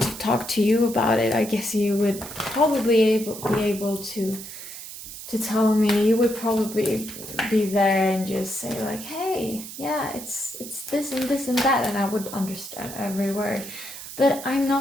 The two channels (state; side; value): noise; right; hiss, 12 dB below the sound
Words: to talk to you about it, I guess you would probably be able to tell me. You would probably be there and just say like, hey, yeah, it's this and this and that, and I would understand every word. But I'm